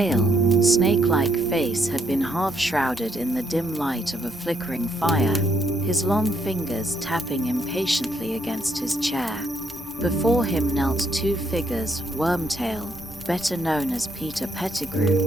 snake-like face had been half-shrouded in the dim light of a flickering fire, his long fingers tapping impatiently against his chair. Before him knelt two figures, Wormtail, better known as Peter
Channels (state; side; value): normal; both; correlation 0.73